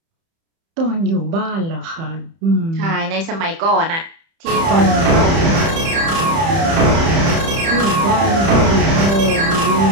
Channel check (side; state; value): left; late; 30 ms